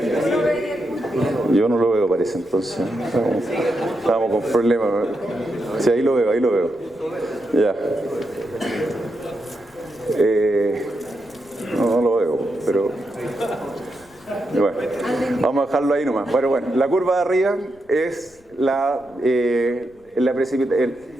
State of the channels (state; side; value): noise; left; rumble, 30 dB below the sound